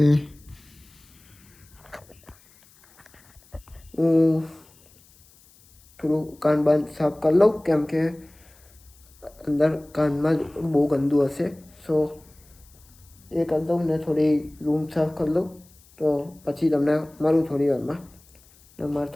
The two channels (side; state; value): left; noise; hiss, 28 dB below the sound